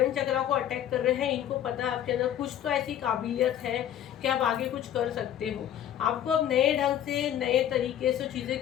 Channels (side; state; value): right; quieter; 10.8 dB